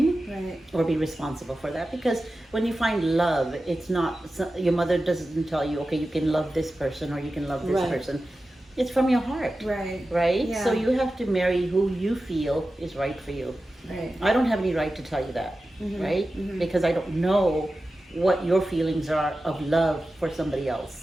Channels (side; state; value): both; normal; correlation 0.94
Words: or be responsible for that, because when you find love, it's not, your mother doesn't tell you, okay, you can love this person or you can love this person. It's from your heart, right? So you have to marry who you feel is right for you. I don't have any right to tell you that, right? Because I don't know what your feelings are of love for somebody